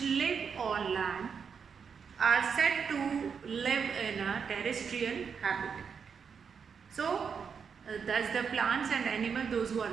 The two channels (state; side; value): quieter; left; 6.4 dB